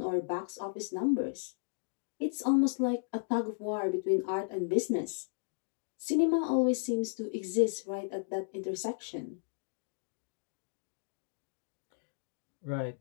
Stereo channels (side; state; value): right; silent; digital silence